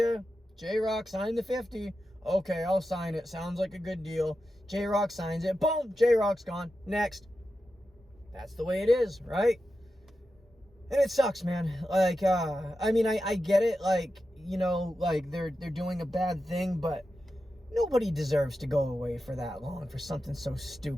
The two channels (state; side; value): normal; both; correlation 0.90